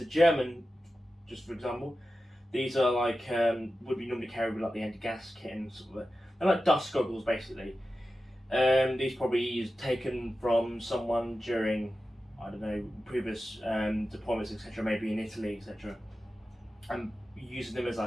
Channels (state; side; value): normal; both; correlation 0.93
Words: are German, just for example. These are like, would be normally carried with like the anti-gas kit and sort of, they're like dust goggles basically. These probably taken from someone during, I don't know, previous deployments, etc., maybe in Italy, etc. I'm using them as